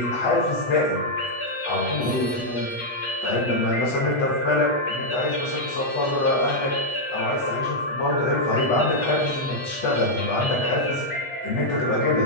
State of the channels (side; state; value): right; late; 8.1 ms